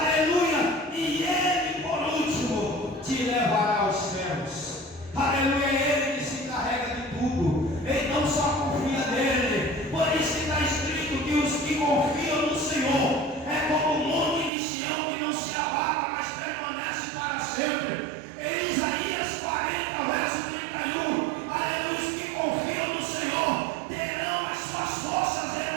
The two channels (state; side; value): drops out; left; at 14.5 s